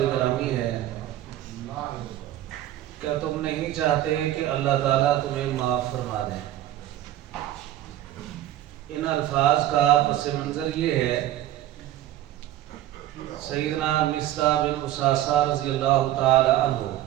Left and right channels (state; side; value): quieter; left; 13.5 dB